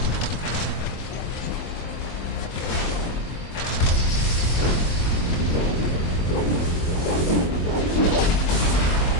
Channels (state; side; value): late; right; 23 ms